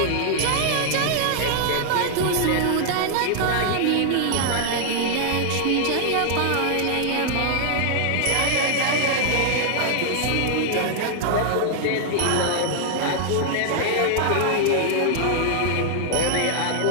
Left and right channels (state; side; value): different; both; correlation 0.00